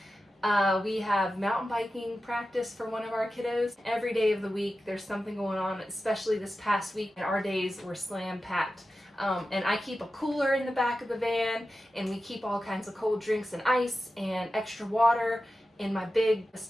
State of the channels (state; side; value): normal; both; correlation 0.93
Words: we have mountain biking practice for one of our kiddos. Every day of the week there's something going on, especially this past week, and our days were slam packed. And I keep a cooler in the back of the van, and we keep all kinds of cold drinks and ice and extra water in my big